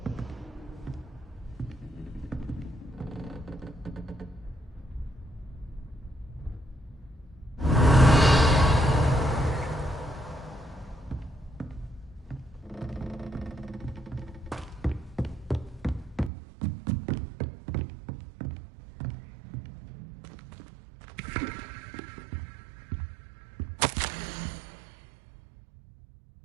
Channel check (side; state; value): left; drops out; at 16.3 s